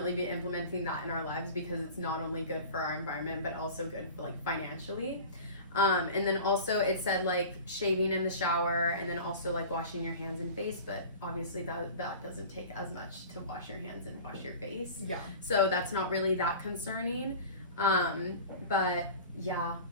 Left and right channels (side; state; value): both; inverted; correlation -0.38